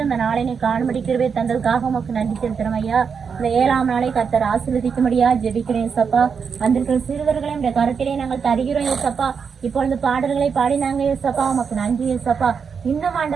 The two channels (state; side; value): quieter; left; 6.2 dB